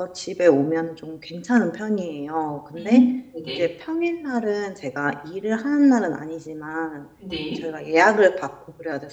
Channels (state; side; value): identical; both; correlation 1.00